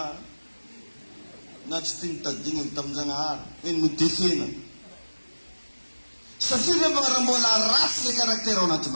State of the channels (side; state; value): both; inverted; correlation -1.00